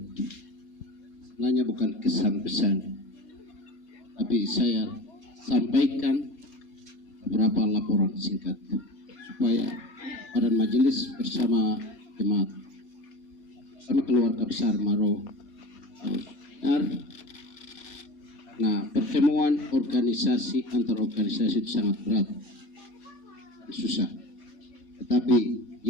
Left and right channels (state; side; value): late; right; 4.2 ms